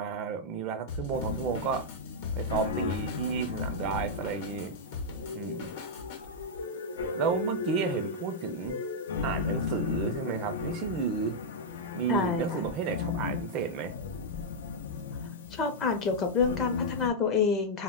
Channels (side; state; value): both; normal; correlation -0.06